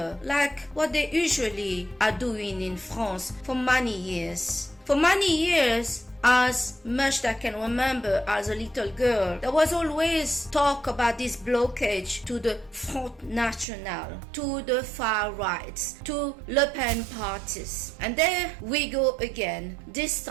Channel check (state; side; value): drops out; left; at 13.7 s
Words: like what they usually are doing in France for many years. For many years, as much as I can remember as a little girl, there was always talk about this blockage to the Front National, to the far rights, to Le Pen parties. And there we go again. This